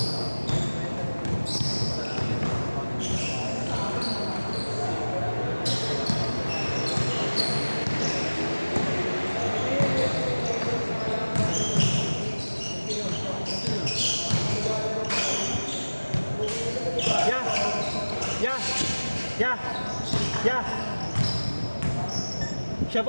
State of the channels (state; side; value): inverted; both; correlation -1.00